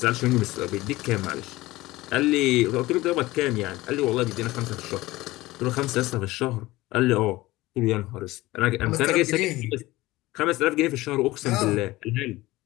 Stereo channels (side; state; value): right; quieter; 18.8 dB